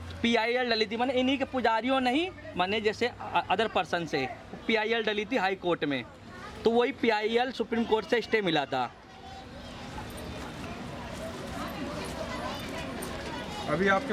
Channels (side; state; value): both; identical; correlation 1.00